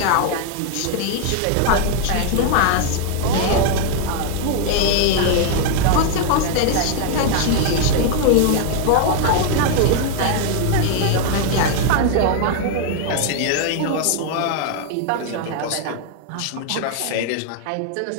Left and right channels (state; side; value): different; both; correlation 0.00